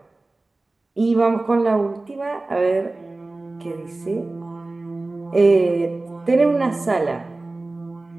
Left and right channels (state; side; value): quieter; left; 3.1 dB